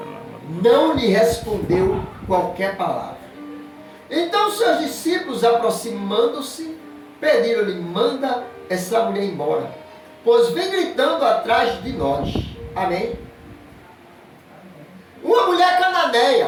não lhe respondeu qualquer palavra. Então seus discípulos, aproximando-se, pediram-lhe, manda essa mulher embora, pois vem gritando atrás de nós. Amém? Uma mulher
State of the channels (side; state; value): both; identical; correlation 1.00